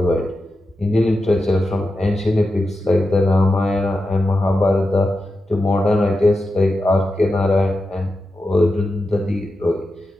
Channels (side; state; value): both; normal; correlation 0.90